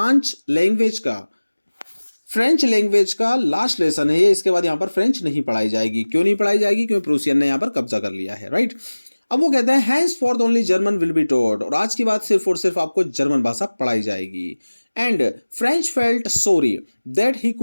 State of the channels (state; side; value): inverted; both; correlation -1.00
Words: लैंग्वेज का लास्ट लेसन है ये। इसके बाद यहां पर फ्रेंच नहीं पढ़ाई जाएगी। क्यों नहीं पढ़ाई जाएगी? क्योंकि प्रूसियन ने यहां पर कब्जा कर लिया है, राइट। अब वो कहते हैं hence for only German will be taught, और आज की बात सिर्फ और सिर्फ आपको जर्मन भाषा पढ़ाई जाएगी। And French felt sorry that he